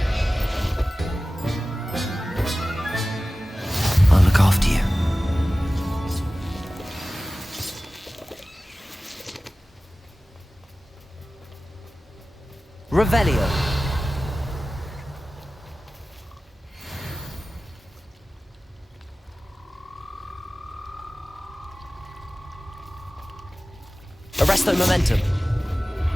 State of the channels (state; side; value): normal; both; correlation 0.96